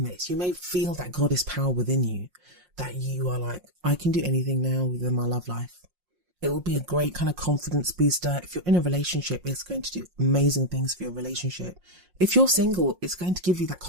this. You may feel that goddess power within you, that you are like, I can do anything now within my love life. It will be a great kind of confidence booster. If you're in a relationship, it's going to do amazing things for your relationship. If you're single, it's going to give you that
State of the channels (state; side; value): late; left; 5.6 ms